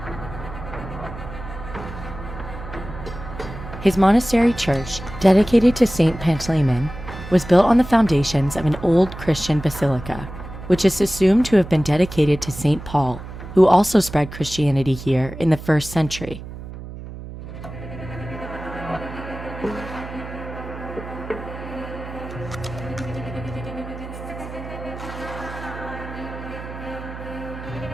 His monastery church, dedicated to Saint Pantaleon, was built on the foundations of an old Christian basilica, which is assumed to have been dedicated to Saint Paul, who also spread Christianity here in the 1st century.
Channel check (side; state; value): right; noise; hum, 11 dB below the sound